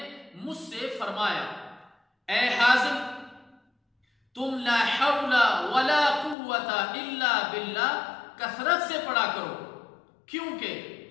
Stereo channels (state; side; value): drops out; right; at 6.4 s